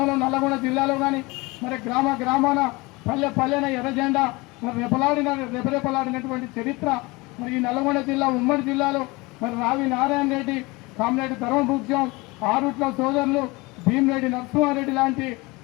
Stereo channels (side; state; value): right; quieter; 24.0 dB